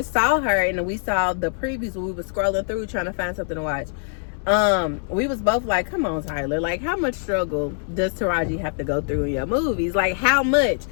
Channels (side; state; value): right; silent; 63 dB below the other